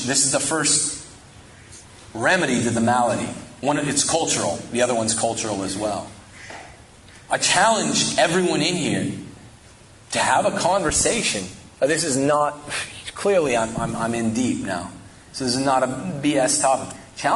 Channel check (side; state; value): both; identical; correlation 1.00